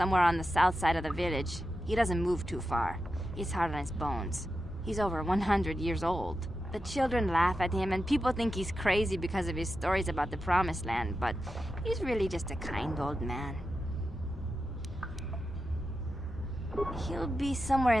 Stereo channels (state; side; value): normal; both; correlation 0.90